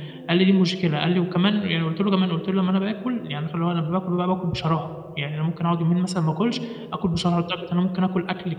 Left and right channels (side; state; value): both; identical; correlation 1.00